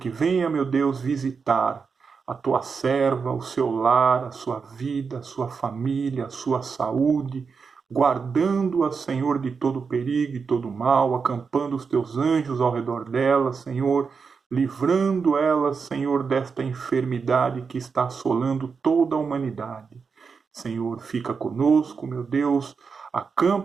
venha, meu Deus, visitar a Tua serva, o seu lar, a sua vida, a sua família, a sua saúde, guardando-a, Senhor, de todo perigo e todo mal, acampando os Teus anjos ao redor dela, Senhor, livrando ela, Senhor, desta enfermidade que está assolando toda a humanidade. Senhor, fica conosco, meu Deus,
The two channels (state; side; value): quieter; left; 5.4 dB